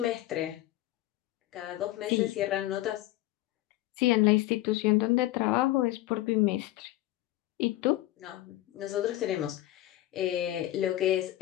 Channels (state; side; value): quieter; right; 15.9 dB